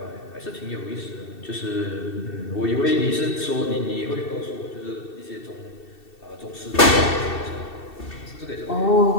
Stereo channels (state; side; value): late; right; 2.7 ms